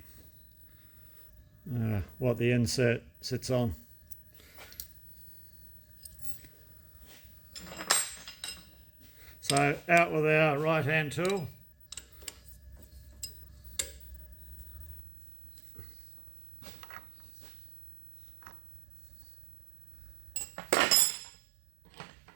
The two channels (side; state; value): left; drops out; at 15.0 s